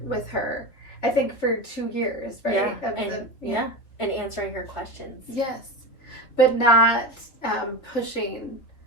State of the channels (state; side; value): late; right; 3.6 ms